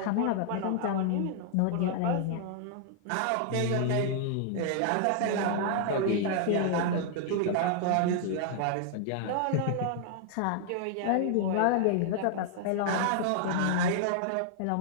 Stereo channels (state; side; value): different; both; correlation -0.01